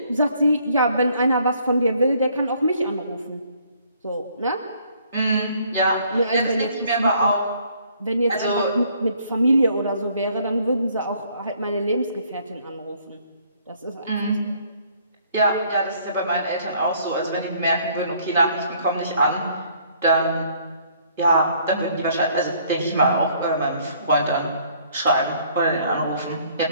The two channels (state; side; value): inverted; both; correlation -0.63